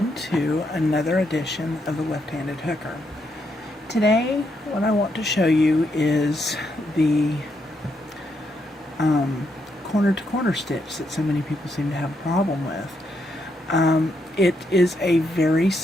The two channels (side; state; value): both; normal; correlation 0.78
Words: to another edition of the Left-Handed Hooker. Today, what I want to show you is the corner-to-corner stitch that so many people seem to have a problem with. It is a very